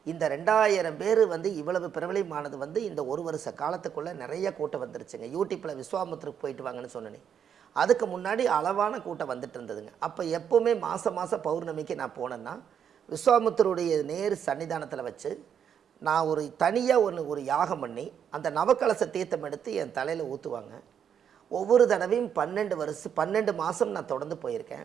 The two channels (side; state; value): left; quieter; 8.3 dB